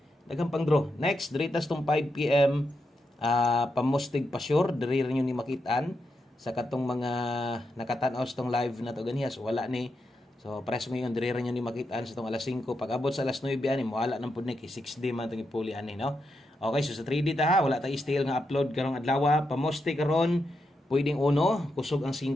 daghang pang draw next diritas tong 5 PM pamustig pa sure diri rin ni makitaan sa katong mga nakatan-aw sa tong live na to ganiya. So wala ni. So press mo yung dire nyo ni makitaan sa tong alas 5 pag abot sa alas 9 ani mo wala nang pud ni kay 6D man tong ipuli ani no. Okay, so sa 3D ta wala ta style nga upload karong adlaw pamoste karon pwedeng uno kusog ang 5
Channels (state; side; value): normal; both; correlation 0.84